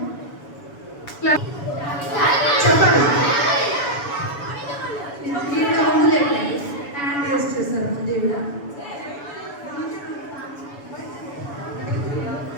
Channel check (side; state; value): right; late; 7.0 ms